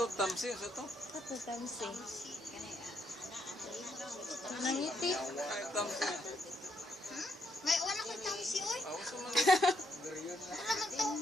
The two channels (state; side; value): normal; both; correlation 0.75